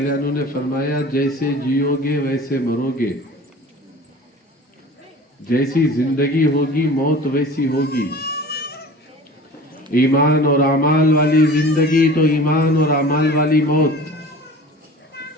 عنہ نے فرمایا، جیسے جیو گے ویسے مرو گے، جیسی زندگی ہوگی موت ویسی ہوگی۔ ایمان اور اعمال والی زندگی تو ایمان اور اعمال والی موت،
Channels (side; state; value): both; normal; correlation 0.40